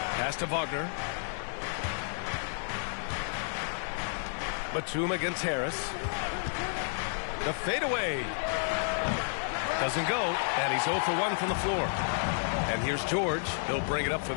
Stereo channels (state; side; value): silent; right; 57 dB below the other